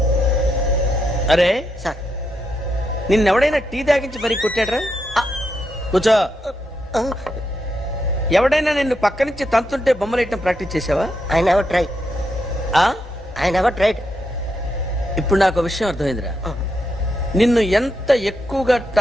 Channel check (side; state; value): both; normal; correlation 0.82